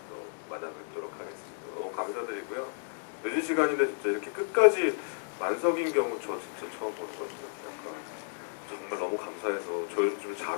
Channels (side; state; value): right; silent; digital silence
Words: 또 만나뵙도록 하겠습니다. 너무 감사드리고요. 늦은 시간인데 진짜 이렇게 끝까지 만석인 경우 저 진짜 처음 보는 것 같아요. 정말 너무 감사해서 저 요즘 좀